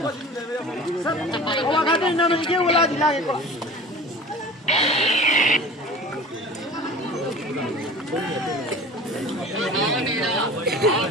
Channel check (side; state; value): both; normal; correlation 0.39